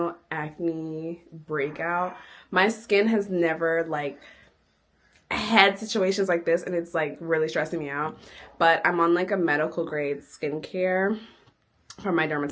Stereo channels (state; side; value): identical; both; correlation 1.00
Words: acne breakout. My skin has never like had situations like this, and it's like really stressing me out. But I'm on like a medical grade skincare from my